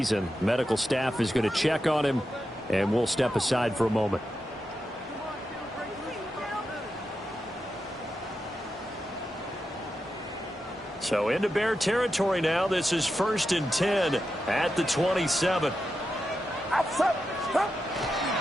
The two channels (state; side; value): normal; both; correlation 0.88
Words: Medical staff is going to check on him, and we'll step aside for a moment. So into Bear territory now. This is 1st and 10 at the 27.